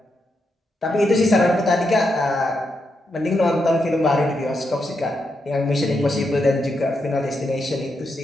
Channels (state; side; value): normal; both; correlation 0.83